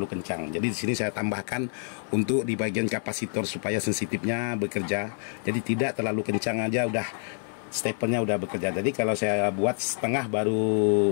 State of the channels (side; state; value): right; silent; 60 dB below the other